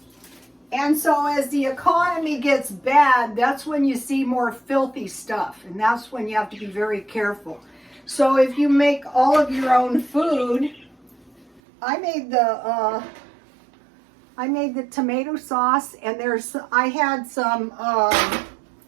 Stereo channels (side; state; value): left; drops out; at 11.6 s